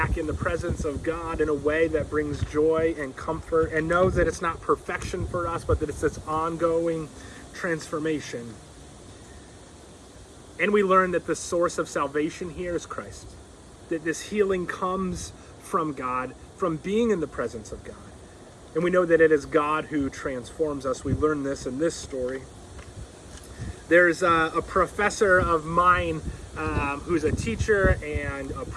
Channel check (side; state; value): both; identical; correlation 1.00